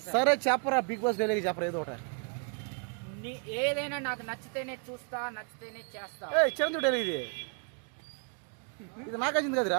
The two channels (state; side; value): quieter; left; 38.5 dB